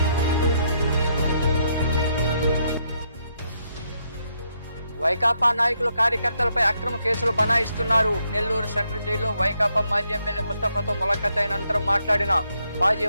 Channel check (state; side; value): inverted; both; correlation -0.76